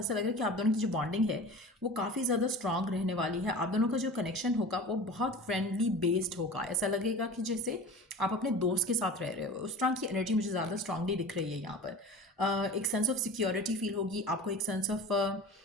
लग रहा है कि आप दोनों की जो बॉन्डिंग है वो काफ़ी ज़्यादा स्ट्रांग रहने वाली है। आप दोनों का जो कनेक्शन होगा वो बहुत फ्रेंडली बेस्ड होगा। ऐसा लगेगा कि जैसे आप अपने दोस्त के साथ रह रहे हो। उस तरह की एनर्जी मुझे ज़्यादा स्ट्रांगली दिख रही है यहाँ पर। एक सेंस ऑफ सिक्योरिटी फील होगी आपको, एक सेंस ऑफ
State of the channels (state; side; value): normal; both; correlation 0.36